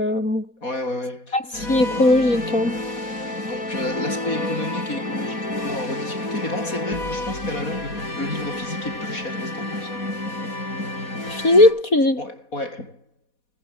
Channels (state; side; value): late; right; 4.2 ms